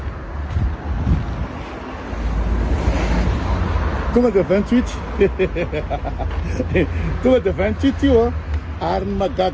tonga de 28 tonga de 28 io a ary ny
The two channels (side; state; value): both; identical; correlation 1.00